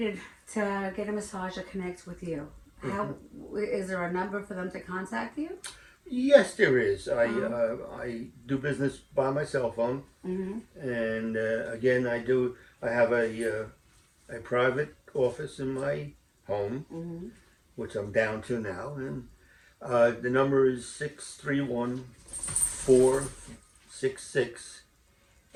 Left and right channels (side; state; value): both; identical; correlation 1.00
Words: to get a massage or connect with you, how is there a number for them to contact you? Yes, there is. I do business by my cell phone, and again, I have a private office in my home, which I'm down to now, and the number is